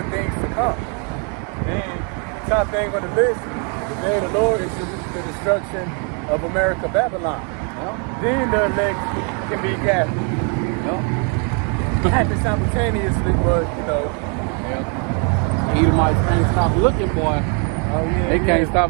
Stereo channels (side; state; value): left; quieter; 37.7 dB